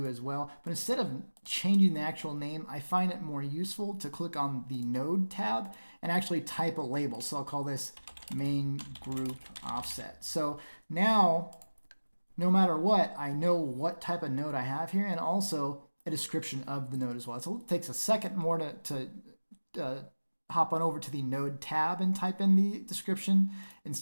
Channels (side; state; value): both; inverted; correlation -1.00